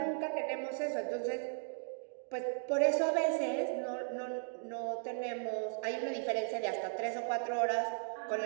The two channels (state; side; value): silent; left; digital silence